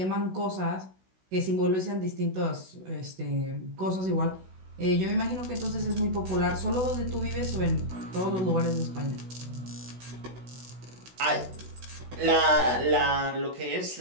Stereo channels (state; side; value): late; left; 16 ms